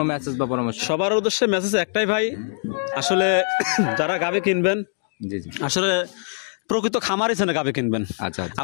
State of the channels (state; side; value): silent; right; digital silence